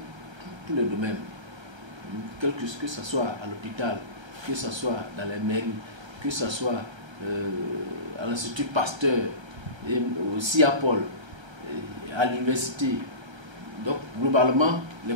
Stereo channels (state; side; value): late; left; 1.3 ms